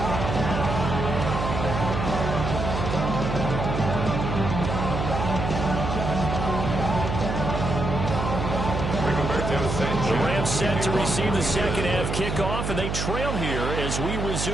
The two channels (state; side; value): noise; right; hum, 2 dB below the sound